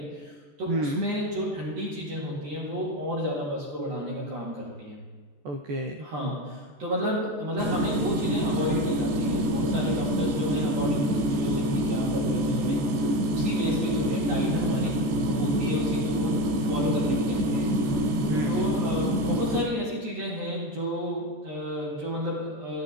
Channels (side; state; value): left; late; 14 ms